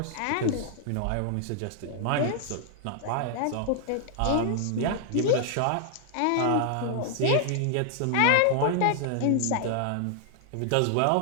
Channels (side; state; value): both; different; correlation 0.00